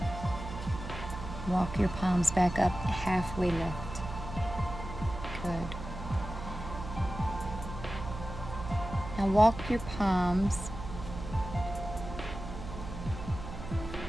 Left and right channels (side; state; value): right; noise; hum, 9 dB below the sound